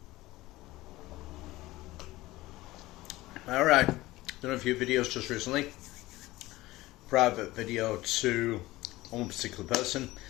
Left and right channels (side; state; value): right; quieter; 18.4 dB